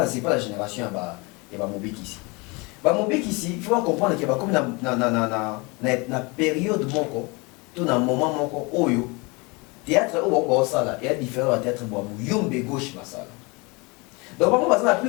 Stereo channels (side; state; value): right; quieter; 27.5 dB